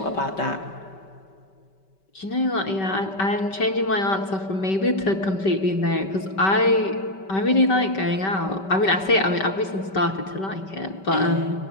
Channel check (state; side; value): late; right; 5.2 ms